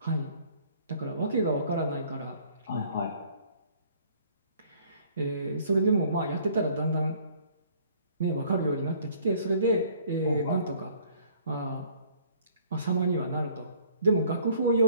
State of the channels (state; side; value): inverted; both; correlation -0.57